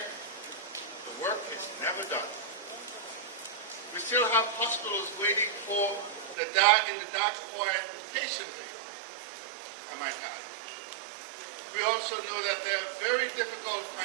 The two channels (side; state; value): left; drops out; at 6.4 s